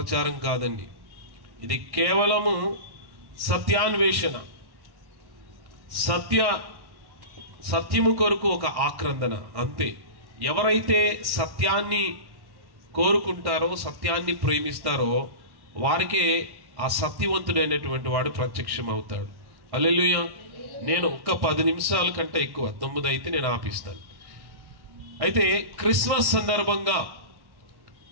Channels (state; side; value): late; left; 1.1 ms